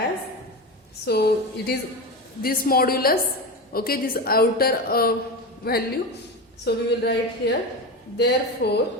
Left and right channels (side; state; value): both; normal; correlation 0.21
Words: so it is this modulus, okay, this outer value. So we will write here, therefore